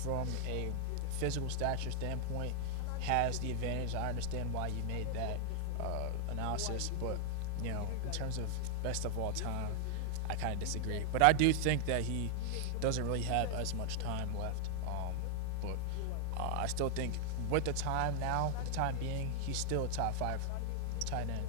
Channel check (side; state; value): both; different; correlation 0.00